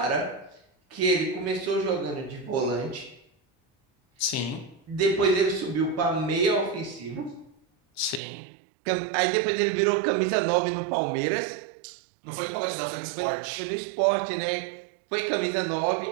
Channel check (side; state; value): left; drops out; at 8.2 s